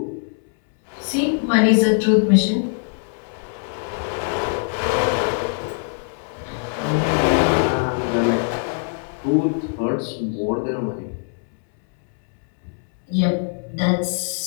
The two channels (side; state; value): right; silent; 64 dB below the other